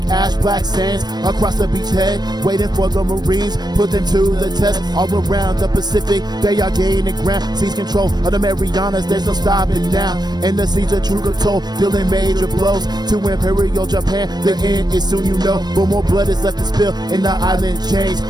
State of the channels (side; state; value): left; late; 0.20 ms